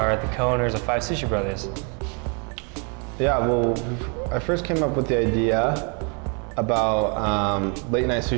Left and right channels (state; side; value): quieter; left; 36.1 dB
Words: the co-owners of 5 Sushi Brothers. Yeah, well, I first came up with the idea about late night